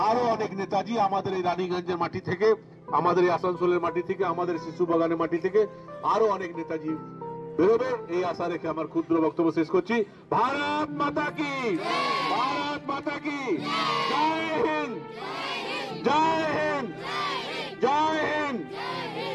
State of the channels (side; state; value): both; identical; correlation 1.00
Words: আরো অনেক নেতাজি আমাদের এই রানীগঞ্জের মাটি থেকে, আমাদের এই আসানসোলের মাটি থেকে, আমাদের শিশু বাগানের মাটি থেকে আরো অনেক নেতাজি বেরোবে, এই আশা রেখে আমার ক্ষুদ্র বক্তব্য শেষ করছি। ভারত মাতা কি, ভারত মাতা কি জয় হিন্দ, জয় হিন্দ, জয় হিন্দ।